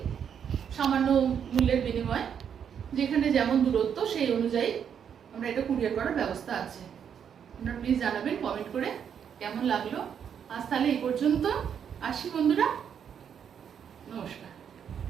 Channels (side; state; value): left; quieter; 8.0 dB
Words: সামান্য মূল্যের বিনিময়ে, যেখানে যেমন দূরত্ব সেই অনুযায়ী আমরা এটা কুরিয়ার করার ব্যবস্থা আছে। আপনারা প্লিজ জানাবেন কমেন্ট করে কেমন লাগলো। আজ তাহলে এই পর্যন্ত, আসি বন্ধুরা, নমস্কার।